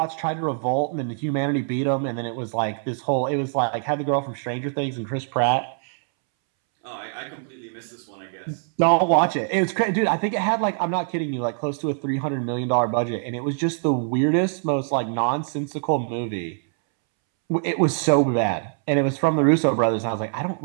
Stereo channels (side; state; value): left; silent; 63 dB below the other